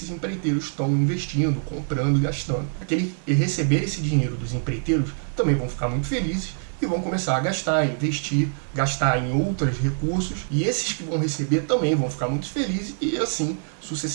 empreiteiros estão investindo, comprando e gastando. Aqueles que receber esse dinheiro dos empreiteiros também vão ficar muito felizes e vão começar a gastar, investir, gastar em outros recursos, e esses que vão receber também vão ficar muito felizes, e assim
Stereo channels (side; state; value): left; silent; 62 dB below the other